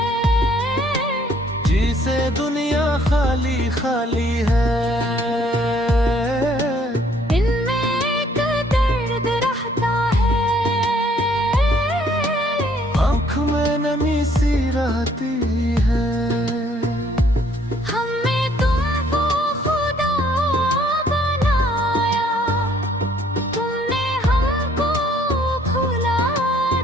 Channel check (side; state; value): both; normal; correlation 0.63